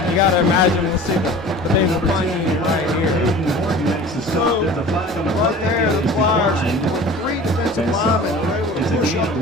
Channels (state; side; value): normal; both; correlation 0.41